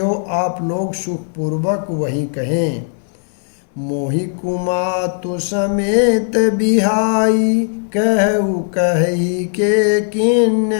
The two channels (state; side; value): silent; right; digital silence